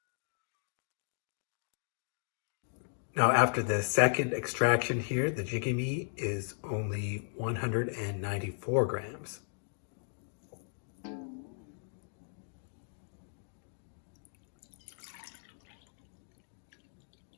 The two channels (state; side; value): silent; right; digital silence